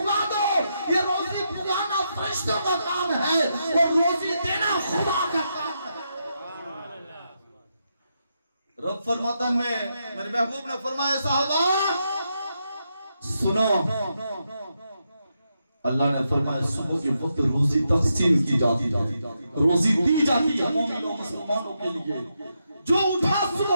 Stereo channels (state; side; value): inverted; both; correlation -0.83